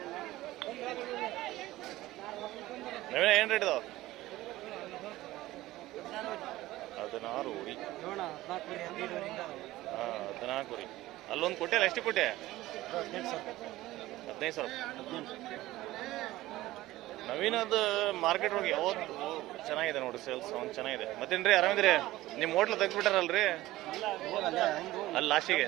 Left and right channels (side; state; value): left; quieter; 16.9 dB